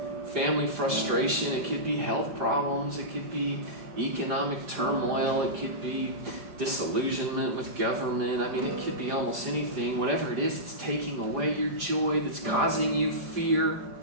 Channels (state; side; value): late; left; 4.9 ms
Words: family frustration, it could be health problems, it could be economic turmoil. It could be disillusionment with government. I mean, it could be almost anything. Whatever it is, it's taking away your joy, that's causing you fear.